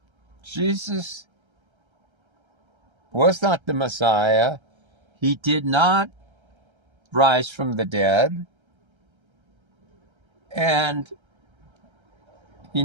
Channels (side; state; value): left; late; 1.3 ms